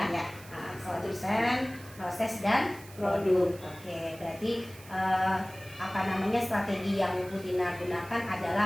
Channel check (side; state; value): right; noise; hiss, 20 dB below the sound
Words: Konten, proses dan produk. Oke, berarti strategi yang Bu Tina gunakan